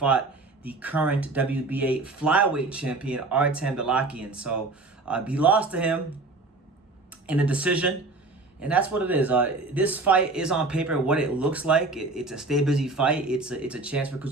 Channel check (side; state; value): left; quieter; 3.4 dB